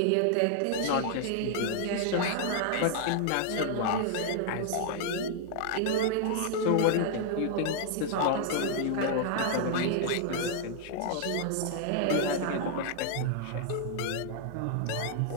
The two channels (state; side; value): different; both; correlation -0.01